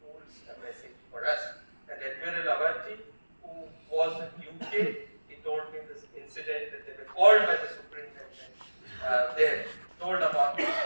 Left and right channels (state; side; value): inverted; both; correlation -1.00